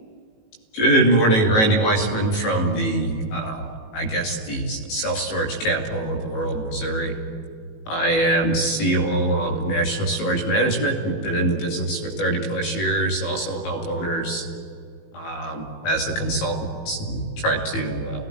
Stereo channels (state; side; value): late; right; 18 ms